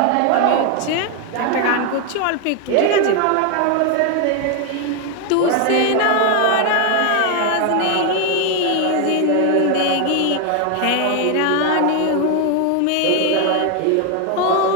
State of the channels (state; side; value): different; both; correlation 0.01